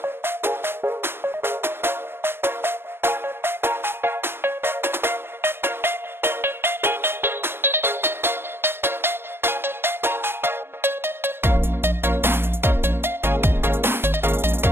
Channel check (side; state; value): left; late; 0.11 ms